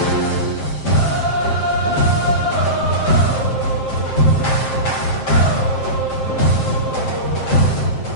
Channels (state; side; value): late; right; 7.6 ms